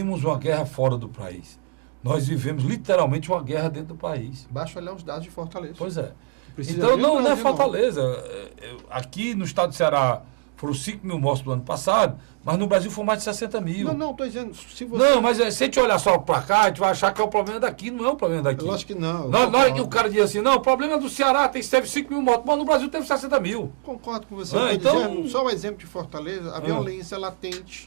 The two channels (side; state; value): left; quieter; 30.8 dB